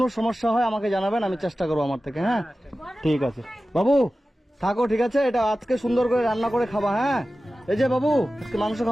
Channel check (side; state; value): both; normal; correlation 0.95